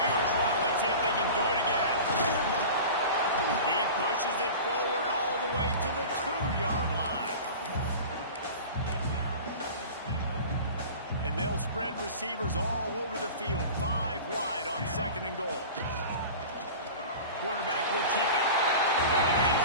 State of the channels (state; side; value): inverted; both; correlation -0.35